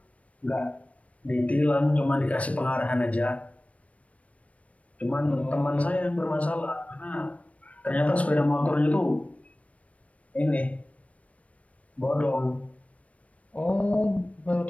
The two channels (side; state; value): right; late; 0.066 ms